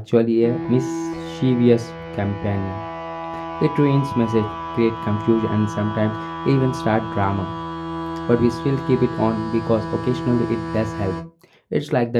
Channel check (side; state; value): both; identical; correlation 1.00